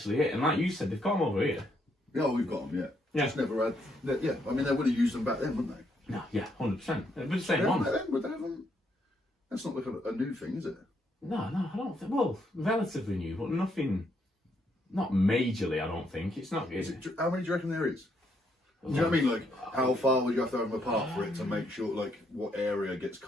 it. And like you said, they've got them over here. Yeah, we've got them. Yeah. Just never had. Yeah, I mean, they would have used them back then, wouldn't they? No, yeah, 100%. They're the same ones. That's not like a new thing, is it? No, I don't think. Well, relatively new, but nothing. Not majorly, I don't think. It's not. How many do you reckon there is? Do you know what I mean? Like, how far would you have to have them apart for it to make sure, like, what area gets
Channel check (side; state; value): both; normal; correlation 0.74